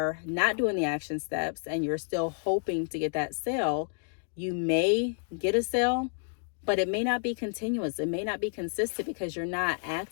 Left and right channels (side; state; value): right; silent; 58 dB below the other